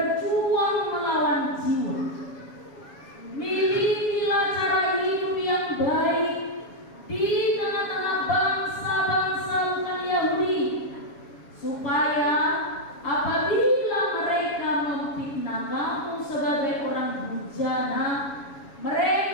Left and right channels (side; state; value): right; late; 7.2 ms